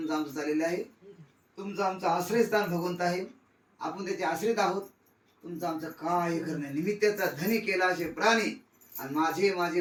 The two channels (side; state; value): both; identical; correlation 1.00